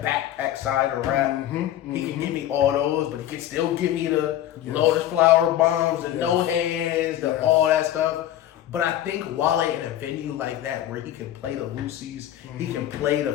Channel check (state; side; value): quieter; right; 12.3 dB